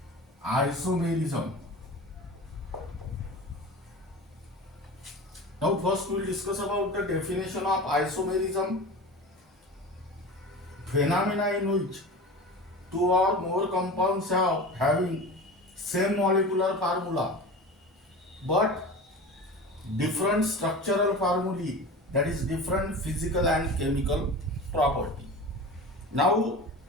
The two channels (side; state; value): both; normal; correlation 0.33